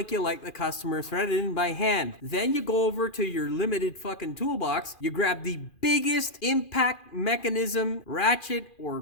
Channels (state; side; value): late; right; 2.4 ms